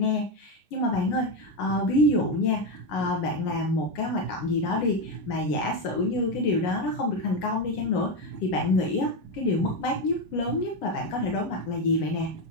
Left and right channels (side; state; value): right; late; 8.8 ms